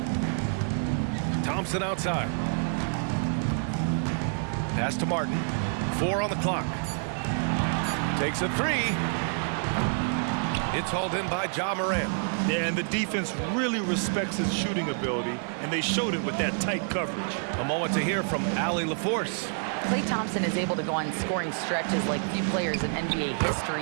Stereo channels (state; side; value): silent; left; 58 dB below the other